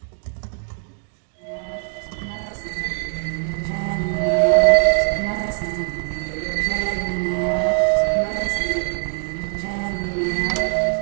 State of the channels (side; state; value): left; silent; 55 dB below the other